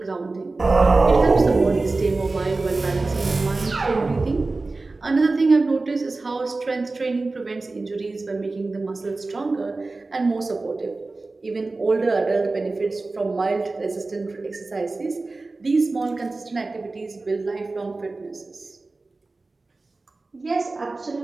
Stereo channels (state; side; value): quieter; left; 3.5 dB